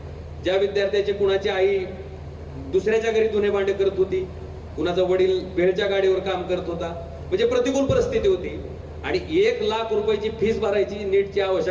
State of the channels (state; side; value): identical; both; correlation 1.00